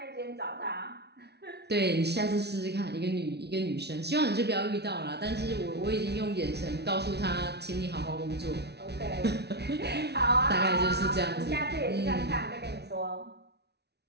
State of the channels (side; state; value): left; late; 0.49 ms